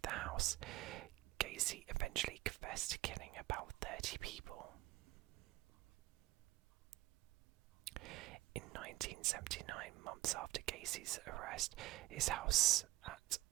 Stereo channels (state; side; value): quieter; left; 17.9 dB